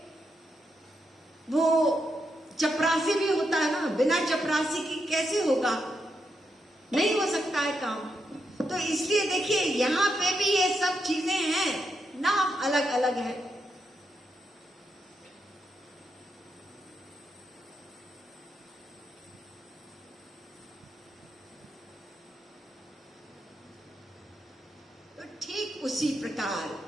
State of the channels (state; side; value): normal; both; correlation 0.82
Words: वो चपरासी भी होता है ना। बिना चपरासी की कैसे होगा? नहीं हो सकता है काम। तो इसलिए देखिए यहाँ पे भी ये सब चीजें हैं, नाम अलग अलग है। तो ठीक उसी